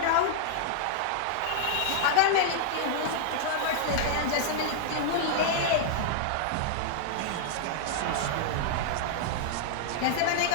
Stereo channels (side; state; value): both; different; correlation -0.01